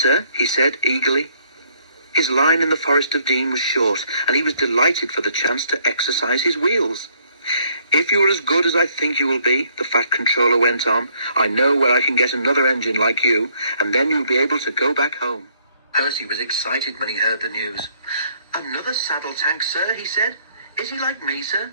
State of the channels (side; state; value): both; inverted; correlation -0.66